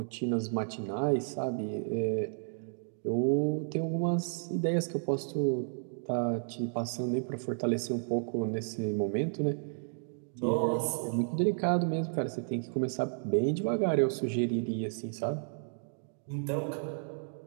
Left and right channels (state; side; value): silent; left; digital silence